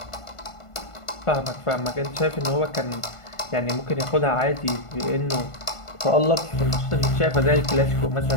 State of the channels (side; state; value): right; late; 1.5 ms